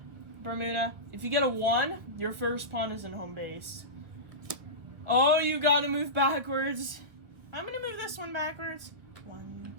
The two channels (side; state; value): left; late; 1.9 ms